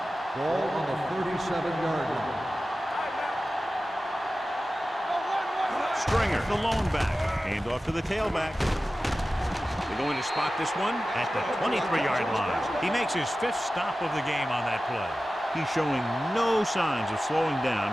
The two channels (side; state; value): both; normal; correlation 0.95